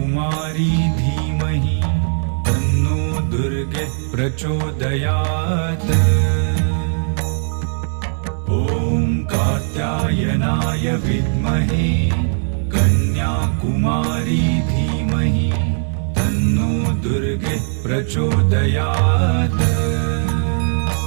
धीमहि तन्नो दुर्गे प्रचोदयात्। ॐ कात्यायनाय विद्महे कन्याकुमारी धीमहि तन्नो दुर्गे प्रचोदयात्।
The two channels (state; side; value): silent; left; digital silence